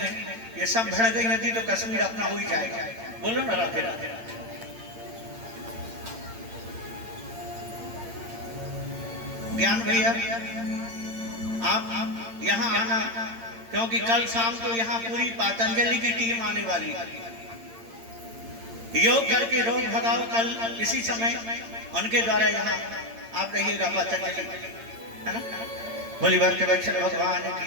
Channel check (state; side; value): late; left; 8.8 ms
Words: ये सब भड़ गई यदि तो कश्मीर अपना हो ही जाएगा। बोलो ना राधे राधे। ज्ञान भैया आप यहाँ आना, क्योंकि कल शाम को यहाँ पूरी पतंजलि की टीम आने वाली है। योग करके रोग भगाओ, कल इसी समय उनके द्वारा यहाँ आप रहिएगा पतंजलि, है ना। बोली भक्त वत्सल भगवान